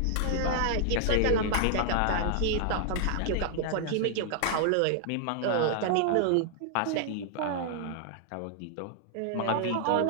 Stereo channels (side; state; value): both; different; correlation -0.01